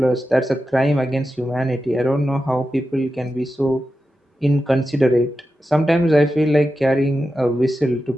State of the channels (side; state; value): both; normal; correlation 0.91